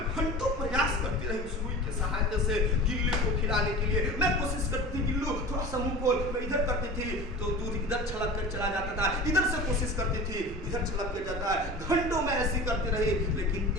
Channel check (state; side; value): normal; both; correlation 0.36